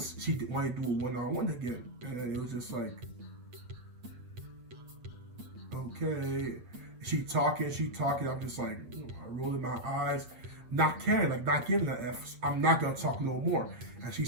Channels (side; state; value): left; late; 8.5 ms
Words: she wanted to do a one-on-one again. And it was just like, okay. She talking. I'm just like, rolling my eyes, not caring, like not giving an F. I'm not gonna talk no more. And